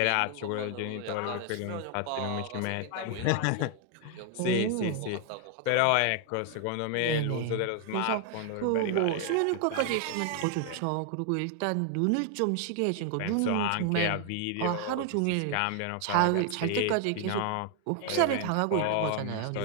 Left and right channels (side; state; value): both; different; correlation 0.00